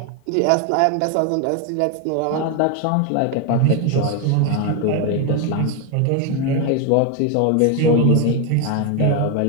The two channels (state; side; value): different; both; correlation 0.01